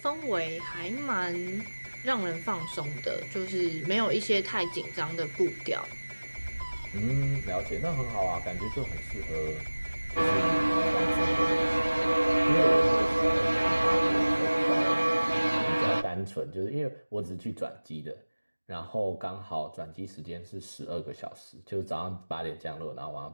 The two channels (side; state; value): both; inverted; correlation -1.00